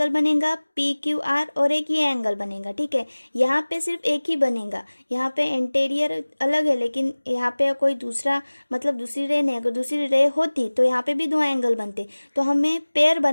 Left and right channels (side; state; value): both; inverted; correlation -1.00